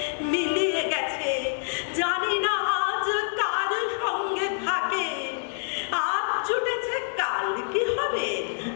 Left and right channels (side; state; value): right; silent; digital silence